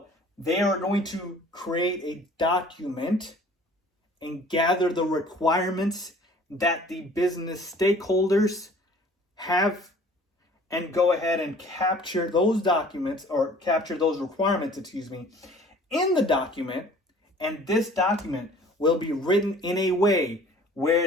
they are going to create a document and gather the requirements that the business stakeholders have, and go ahead and capture those documents, or capture those requirements, in the document. And this document will be written in a way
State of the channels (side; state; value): both; normal; correlation 0.51